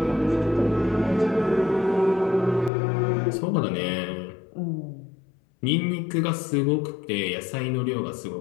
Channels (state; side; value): drops out; right; at 2.7 s